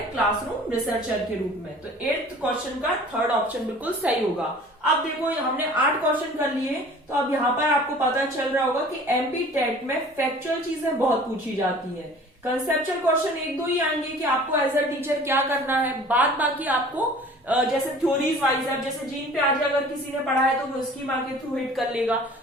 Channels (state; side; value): normal; both; correlation 0.47